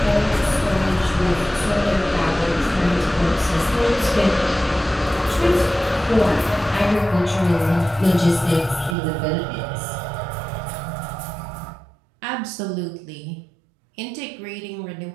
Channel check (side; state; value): left; drops out; at 9.0 s